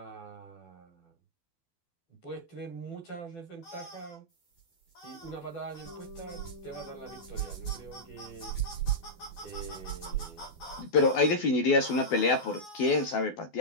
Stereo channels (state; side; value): late; right; 12 ms